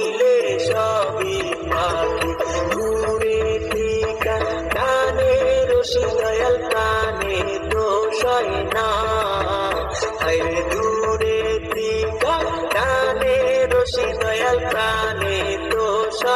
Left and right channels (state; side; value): identical; both; correlation 1.00